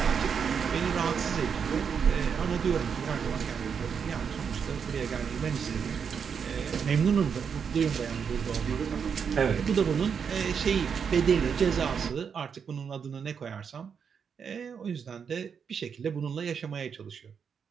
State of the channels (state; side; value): quieter; left; 6.8 dB